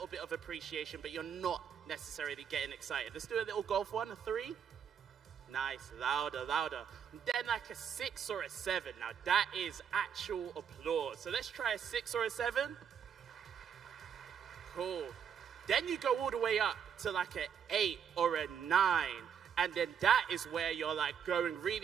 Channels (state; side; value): quieter; left; 7.8 dB